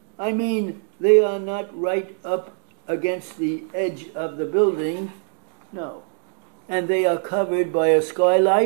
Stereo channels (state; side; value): silent; left; digital silence